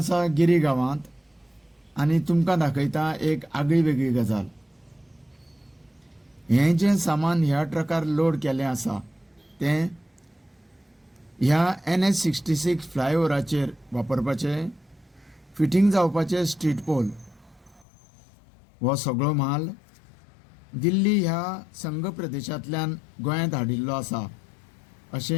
गिरी गांवांत आनी तुमकां दाखयता एक आगळी वेगळी गजाल. हें जें सामान ह्या ट्रकार लोड केलें आसा तें ह्या NH-66 फ्लायओव्हराचेर वापरपाचें फिटींग जावपाचें स्ट्रीट पोल. हो सगळो माल दिल्ली ह्या संघ प्रदेशांतल्यान गोंयांत हाडिल्लो आसा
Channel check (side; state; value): right; drops out; at 17.9 s